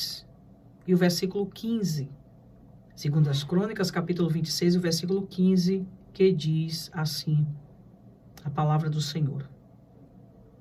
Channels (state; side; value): identical; both; correlation 1.00